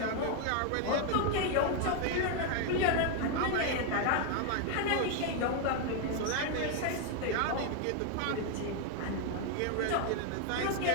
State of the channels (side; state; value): both; different; correlation 0.01